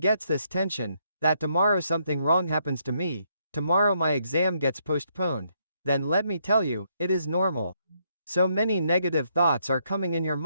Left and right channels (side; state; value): both; inverted; correlation -0.74